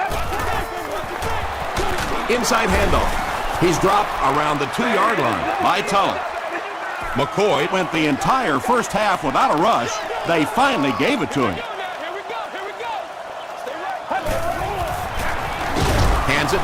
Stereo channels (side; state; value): both; identical; correlation 1.00